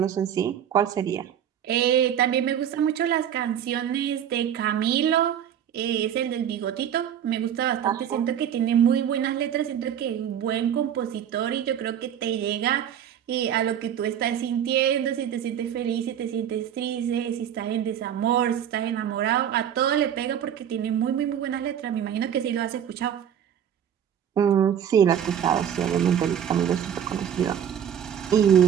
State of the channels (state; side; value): quieter; left; 9.3 dB